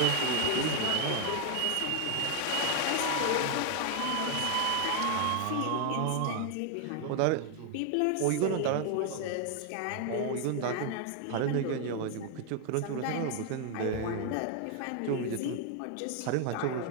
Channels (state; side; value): different; both; correlation 0.00